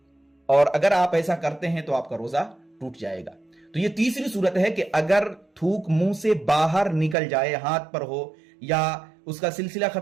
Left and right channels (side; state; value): left; drops out; at 7.2 s